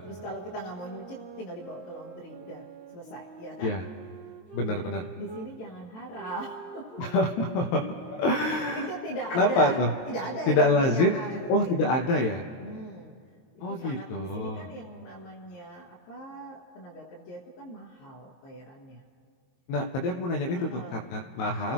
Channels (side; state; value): right; late; 23 ms